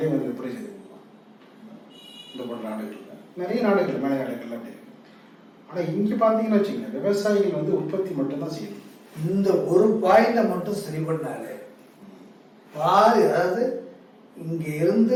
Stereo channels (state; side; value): identical; both; correlation 1.00